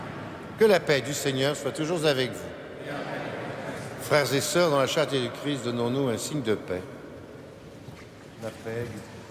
Que la paix du Seigneur soit toujours avec vous. Frères et sœurs, dans la charité du Christ, donnons-nous un signe de paix. La paix du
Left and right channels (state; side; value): identical; both; correlation 1.00